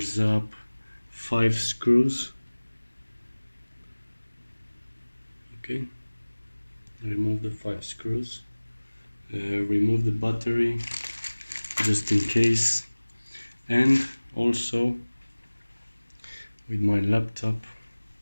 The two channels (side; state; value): both; inverted; correlation -1.00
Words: up 5 screws. Okay, remove the 5 screws. Remove the battery just in case, and also with my laptop